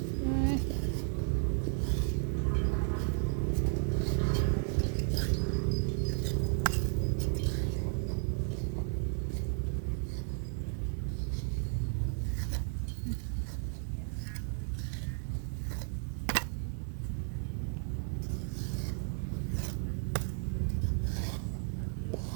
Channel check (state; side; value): silent; left; digital silence